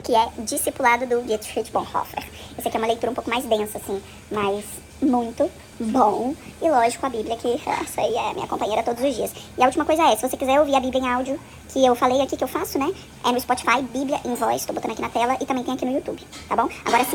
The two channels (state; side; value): identical; both; correlation 1.00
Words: que é Discipulado do Dietrich Bonhoeffer. Esse aqui é uma leitura um pouco mais densa, assim, mas muito bom. E lógico, a Bíblia, que essa aí é minha companheira todos os dias. E a última coisa é, se você quiser ouvir a Bíblia em áudio, que eu falei aqui, que eu faço, né? É no Spotify, Bíblia em Voz, tô botando aqui na tela, e também tem aqui no YouTube, tá bom? Agora